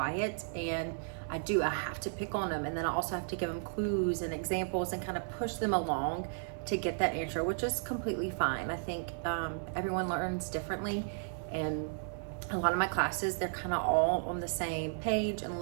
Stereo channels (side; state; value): left; silent; digital silence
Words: and I have to pick on them, and then I also have to give them clues and examples and kind of push them along to get that answer, which is completely fine. I think everyone learns differently, and a lot of my classes, they're kind of all on the same page and